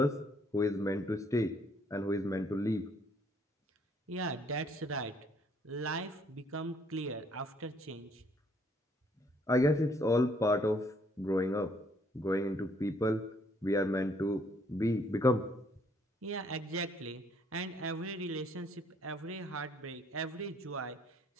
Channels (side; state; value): both; normal; correlation 0.65